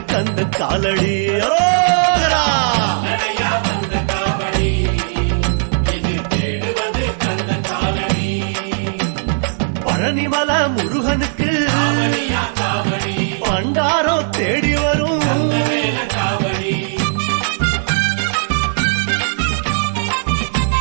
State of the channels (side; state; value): left; silent; 68 dB below the other